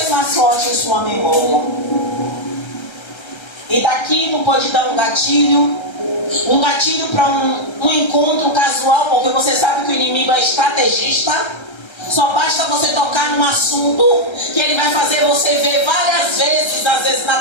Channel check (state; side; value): late; right; 1.3 ms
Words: mais forte em sua memória. E daqui não pode dar um gatilho para um encontro casual, porque você sabe que o inimigo é estrategista. Só basta você tocar num assunto que ele vai fazer você ver várias vezes, às vezes na